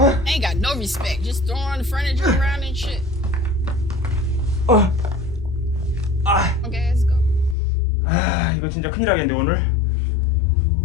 Ain't got no respect. Just throwing the furniture around and shit. Okay, let's go. 아 이거 진짜 큰일 나겠는데 오늘.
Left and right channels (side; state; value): right; drops out; at 7.6 s